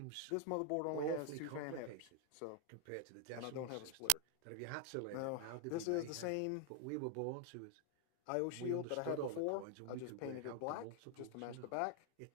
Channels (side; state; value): both; different; correlation 0.00